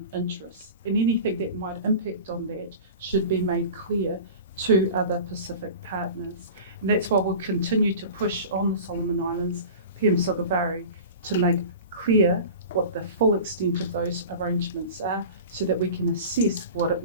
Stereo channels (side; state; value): both; inverted; correlation -0.36